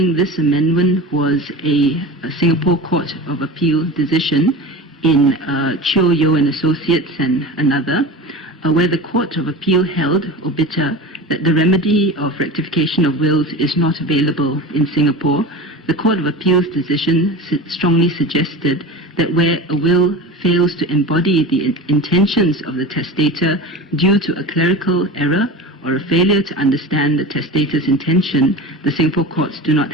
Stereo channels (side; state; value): both; normal; correlation 0.30